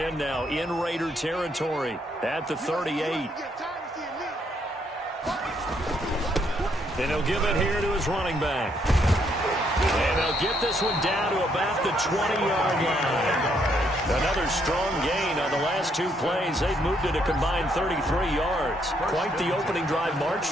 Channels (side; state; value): both; normal; correlation 0.72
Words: now in Raider territory at the 38. And he'll give it here to his running back. And they'll get this one down to about the 20-yard line. Another strong gain on the last 2 plays. They've moved it a combined 33 yards. Quite the opening drive march